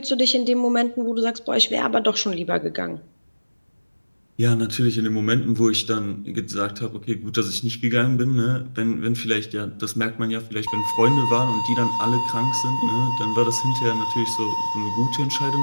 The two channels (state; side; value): inverted; both; correlation -1.00